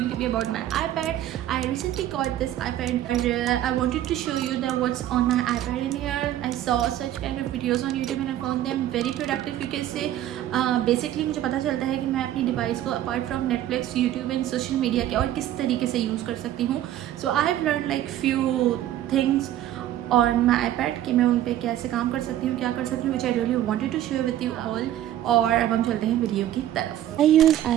to be about my iPad. I recently got this iPad and I wanted to show you that what's on my iPad in here. I saw such kind of videos on YouTube and I found them very productive. You can say basically मुझे पता चलता है कि मैं अपनी डिवाइस को apart from Netflix, YouTube and social media के और किस तरीके से यूज़ कर सकती हूँ. So I have learned like few things on my iPad कि मैं उन पे कैसे काम कर सकती हूँ, क्या कर सकती हूँ, which I really wanted to share with you all. और अब हम चलते हैं वीडियो की तरफ. I use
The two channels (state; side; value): quieter; left; 12.5 dB